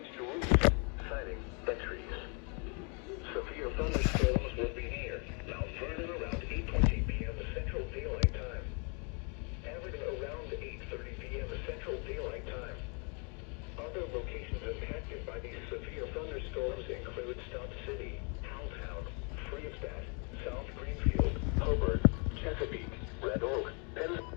to roofs, siding, and trees. Severe thunderstorms will be near Mount Vernon around 8:20 p.m. Central Daylight Time. Averaging around 8:30 p.m. Central Daylight Time. Other locations impacted by these severe thunderstorms include Stop City, Howelltown, Freestadt, South Greenfield, Hobart, Chesapeake, Red Oak, Penn.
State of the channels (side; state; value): right; quieter; 35.5 dB